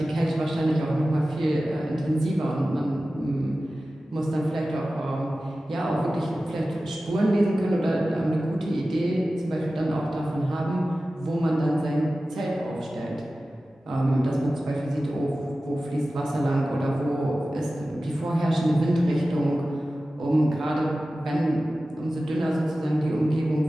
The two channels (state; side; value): normal; both; correlation 0.95